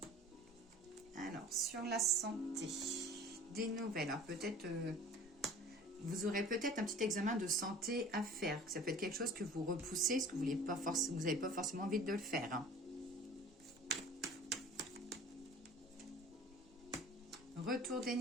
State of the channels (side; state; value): both; normal; correlation 0.44